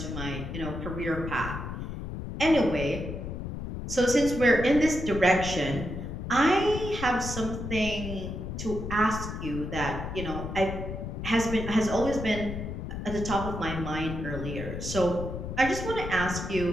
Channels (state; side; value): noise; left; rumble, 6 dB below the sound